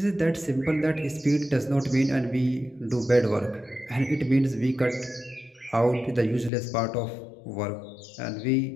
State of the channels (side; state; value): right; drops out; at 6.5 s